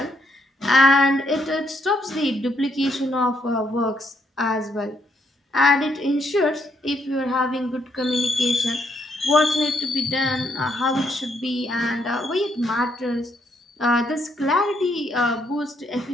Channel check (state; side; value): normal; both; correlation 0.74